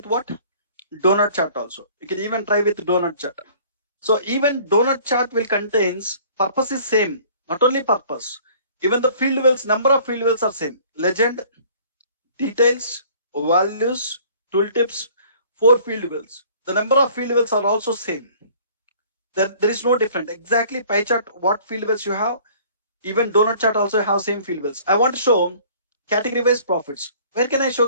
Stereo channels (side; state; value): both; inverted; correlation -0.53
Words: what? Donut chart also. You can even try with donut chart. So even donut chart will contains, purpose is same, not only purpose. Even the field wells, number of field wells are same. Legend, details, values, tooltips, 4 field wells. The number of field wells are also same. There is no different. Exactly pie chart, what field wells you have, even donut chart also have same field wells. I want to show category wise profits. Where can I show